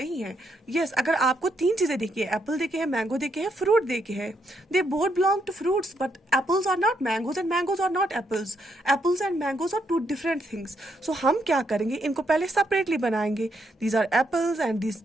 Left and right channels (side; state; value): both; normal; correlation 0.77